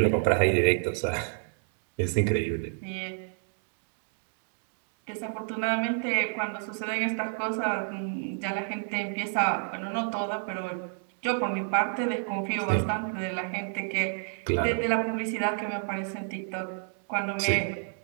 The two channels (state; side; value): silent; left; 58 dB below the other